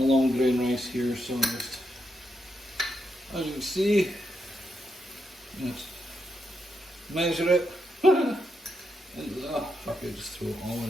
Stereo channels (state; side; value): normal; both; correlation 0.82